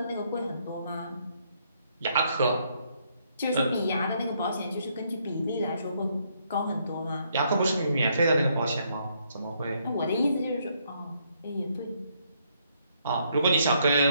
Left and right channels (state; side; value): inverted; both; correlation -0.72